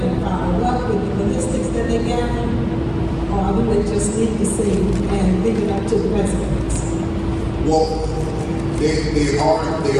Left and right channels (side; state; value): both; identical; correlation 1.00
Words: and follow up with the ballistics that they gather? Or do they just leave the scene and leave it up to the residents? Well, they